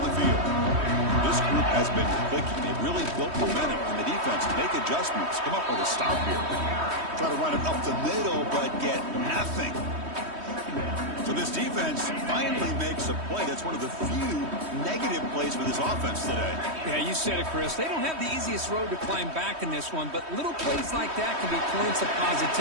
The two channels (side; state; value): left; late; 3.1 ms